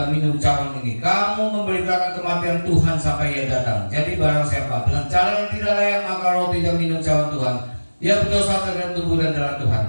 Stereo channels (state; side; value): inverted; both; correlation -1.00